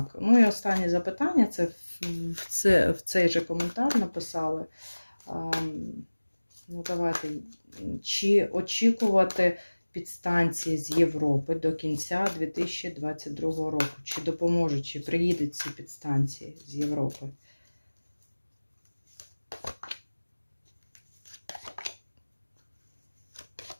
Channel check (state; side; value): inverted; both; correlation -1.00